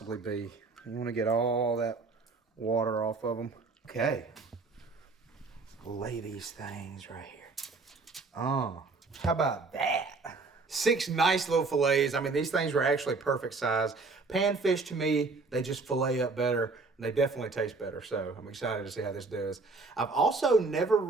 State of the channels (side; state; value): left; quieter; 3.9 dB